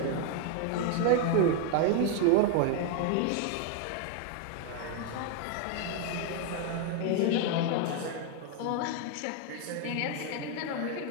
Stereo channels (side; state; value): both; different; correlation 0.01